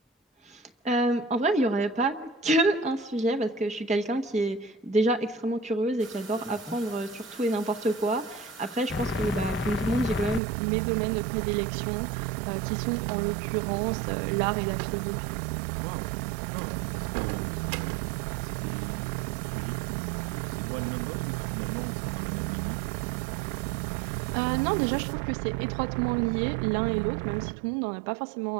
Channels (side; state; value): left; drops out; at 10.4 s